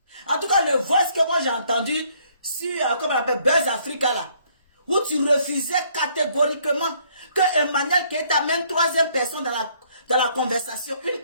En tout cas, le voice que moi j'ai entendu sur, comment on appelle, Buzz Africa là, où tu refusais catégoriquement que Emmanuel qui est ta même troisième personne dans la conversation, une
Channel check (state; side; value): inverted; both; correlation -0.65